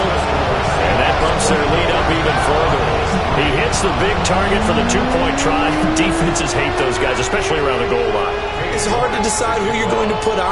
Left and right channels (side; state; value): both; identical; correlation 1.00